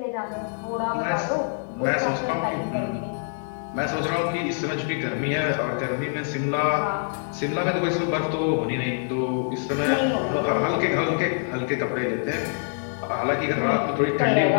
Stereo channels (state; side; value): silent; right; 62 dB below the other